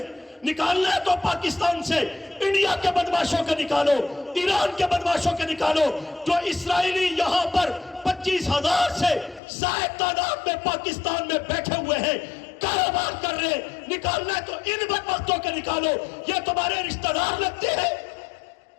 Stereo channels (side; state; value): right; drops out; at 9.4 s